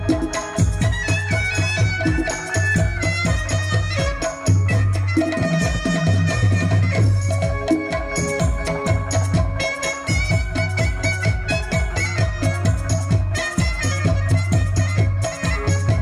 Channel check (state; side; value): identical; both; correlation 1.00